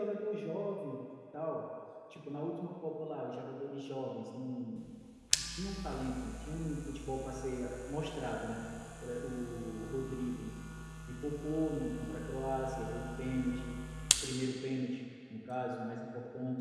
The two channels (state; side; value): identical; both; correlation 1.00